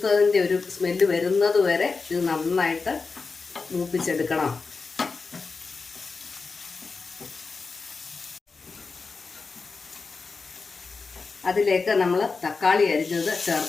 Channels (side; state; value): right; quieter; 4.4 dB